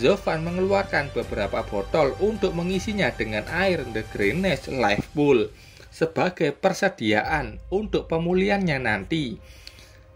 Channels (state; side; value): identical; both; correlation 1.00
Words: mengeluarkan beberapa botol untuk mengisinya dengan air The Greatness Life Pool sebagai persediaan untuk pemulihannya nanti.